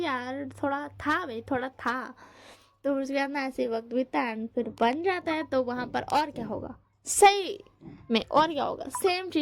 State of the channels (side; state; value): both; identical; correlation 1.00